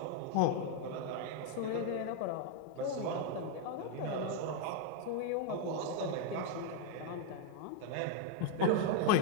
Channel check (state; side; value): different; both; correlation 0.01